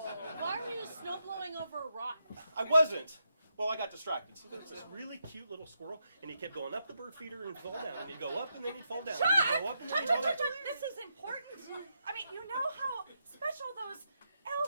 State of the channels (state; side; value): inverted; both; correlation -0.82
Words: Why were you snowblowing over a rock? I wasn't. Well, I got distracted. See, there's this really cute little squirrel, and he kept going up the bird feeder and fall down, and he'd go up, and then he'd fall down, and he'd go up, and then he'd go down. This is important. I mean, you know how special those